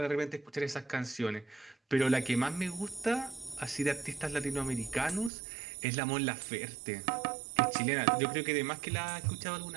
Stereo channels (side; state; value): left; drops out; at 5.3 s